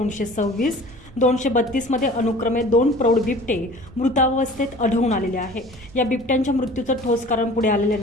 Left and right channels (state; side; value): normal; both; correlation 0.44